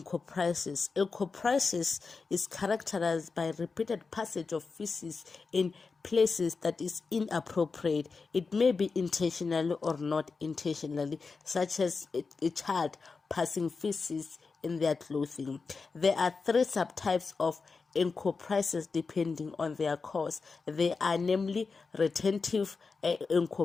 Encopresis is characterized by repeated passage of feces in places that is inappropriate. It may be intentionally or not intentionally, such as a child passing feces in their clothing. There are 3 subtypes of Encopresis depending on their cause. They are namely retentive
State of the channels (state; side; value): quieter; right; 4.5 dB